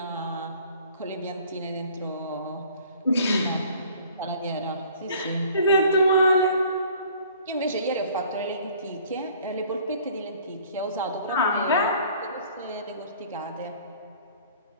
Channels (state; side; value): inverted; both; correlation -0.53